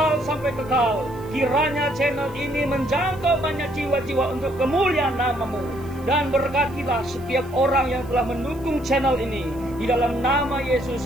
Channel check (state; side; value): noise; right; hiss, 26 dB below the sound